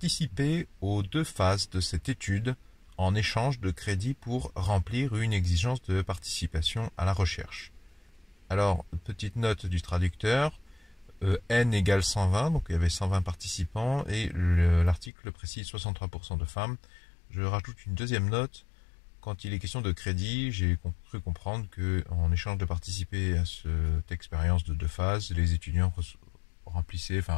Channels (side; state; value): right; drops out; at 15.1 s